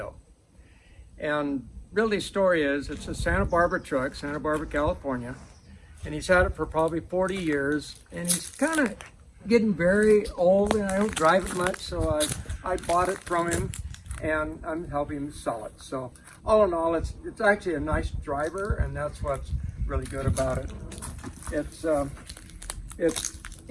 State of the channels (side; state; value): both; identical; correlation 1.00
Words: And really, the story is, it's a Santa Barbara truck, Santa Barbara, California. And he's had it for probably 40 years. And he's kind of getting very old, and I don't drive it much, so I bought it from him, and I'm helping him sell it. So all in all, it's actually a nice driver, and that's what's really good about it.